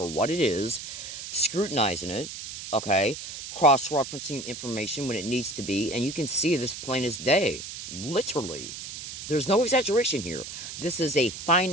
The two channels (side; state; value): right; noise; hiss, 10 dB below the sound